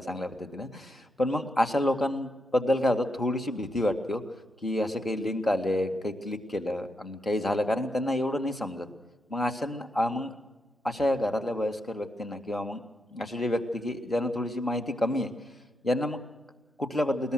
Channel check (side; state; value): both; normal; correlation 0.82